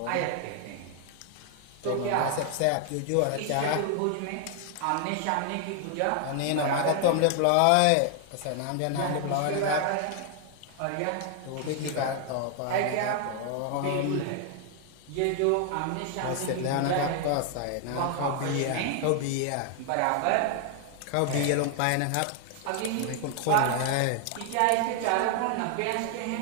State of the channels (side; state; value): both; different; correlation 0.00